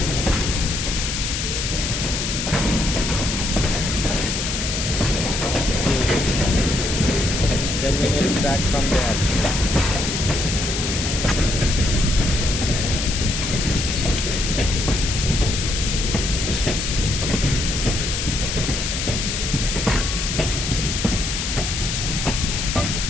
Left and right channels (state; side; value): noise; left; hiss, 3 dB below the sound